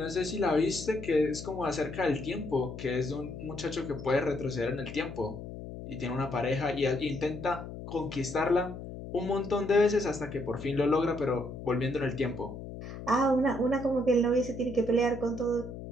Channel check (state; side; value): noise; left; hum, 10 dB below the sound